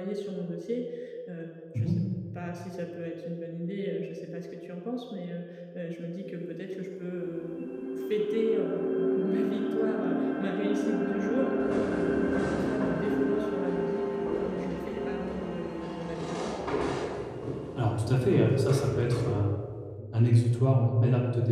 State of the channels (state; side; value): identical; both; correlation 1.00